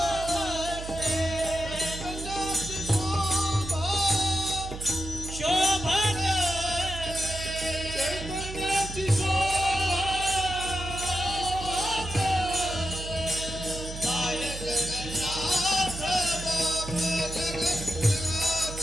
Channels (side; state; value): right; noise; hum, 9 dB below the sound